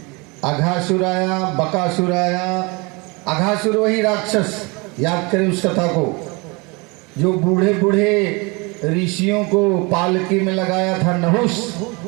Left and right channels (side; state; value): left; quieter; 27.9 dB